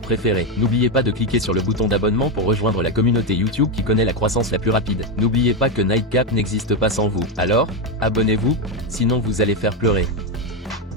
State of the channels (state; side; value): normal; both; correlation 0.08